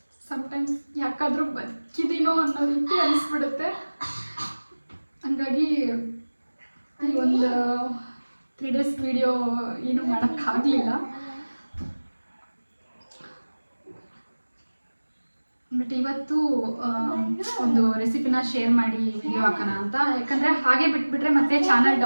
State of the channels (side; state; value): both; inverted; correlation -1.00